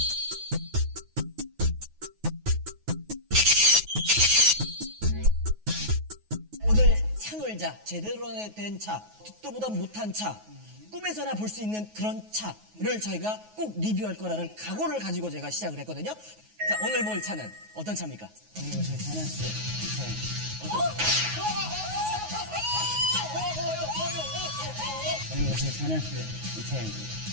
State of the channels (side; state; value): left; late; 9.4 ms